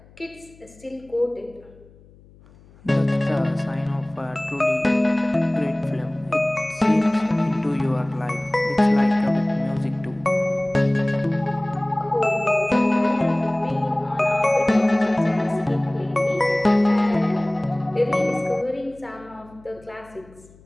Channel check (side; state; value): left; noise; hum, 26 dB below the sound